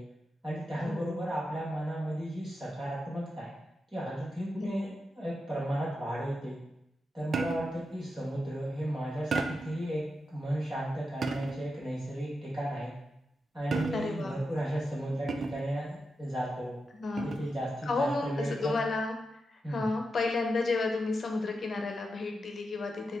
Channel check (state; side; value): normal; both; correlation 0.88